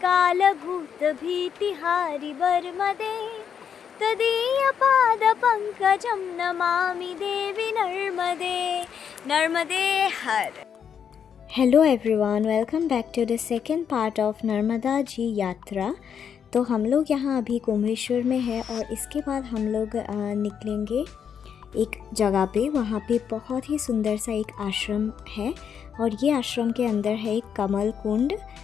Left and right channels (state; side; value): quieter; right; 7.7 dB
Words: तदीयपादपङ्कजं नमामि देवी नर्मदे नर्मदे हर। Hello everyone, welcome back to the second part of Narmada ji यात्रा। तो हम लोग यहाँ अभी कुंभेश्वर में है और इसके बाद हम लोग निकलेंगे एक जगह पे। वहाँ पे बहुत ही सुंदर सा एक आश्रम है और ये आश्रम के अंदर है एक कमल कुंड